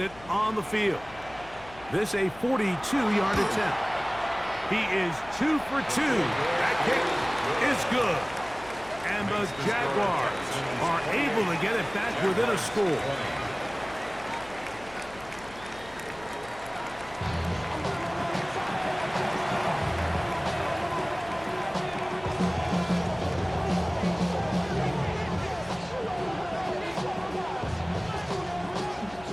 on the field. This a 42-yard attempt. He is 2 for 2. That kick is good. And the Jaguars are able to get it back within a score.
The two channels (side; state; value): left; noise; hum, 20 dB below the sound